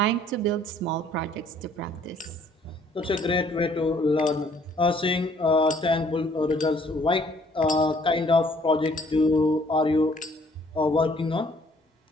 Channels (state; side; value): normal; both; correlation 0.61